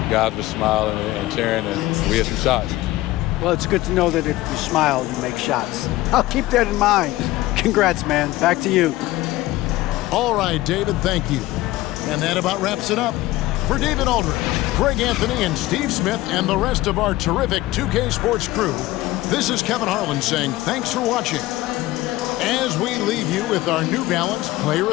Guys were smiling and cheering, and we had some shots. Well, it's good to know that if you smile, you make shots. I'll keep that in mind. Congrats, man. Back to you. All right, David, thank you. And that about wraps it up. For David Aldridge, Greg Anthony, and Steve Smith, and the rest of our terrific 2K Sports crew, this is Kevin Harlan saying thanks for watching. As we leave you with our New Balance Player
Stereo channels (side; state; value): right; quieter; 17.5 dB